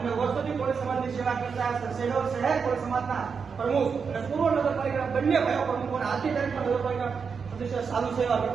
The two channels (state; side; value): quieter; left; 5.8 dB